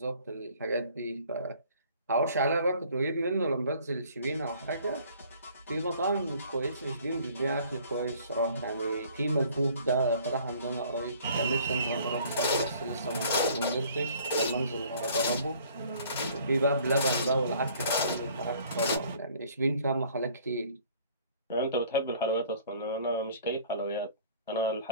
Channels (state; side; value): inverted; both; correlation -0.55